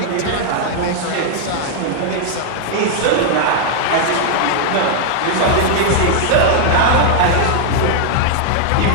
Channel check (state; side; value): different; both; correlation 0.00